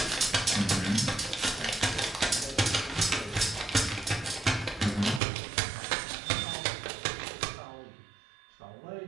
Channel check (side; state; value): left; drops out; at 5.2 s